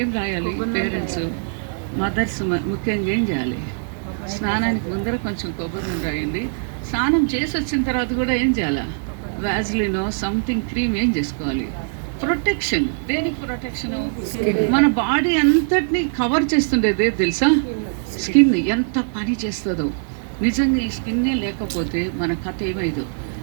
ఏం రాయాలి? పేరెంట్స్, మదర్స్ ముఖ్యంగా ఏం చేయాలి? స్నానానికి ముందర కొంచెం కొబ్బరి నూనె రాయండి. స్నానం చేసి వచ్చిన తర్వాత కూడా ఏం చేయాలా? వ్యాజ్లినో సంథింగ్ క్రీమ్ ఏం చేసుకోవాలి? ప్రొటెక్షన్. దేనికి ప్రొటెక్షను? మన బాడీ అంతటిని కవర్ చేస్తుండేదే తెలుసా? స్కిన్ ఎంత పని చేస్తుందో. నిజంగా ఈ స్కిన్నే లేకపోతే మన కథ ఏమైందో.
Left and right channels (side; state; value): left; silent; digital silence